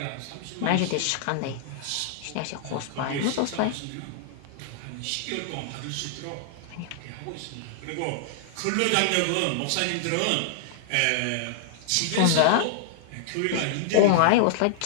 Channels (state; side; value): different; both; correlation -0.01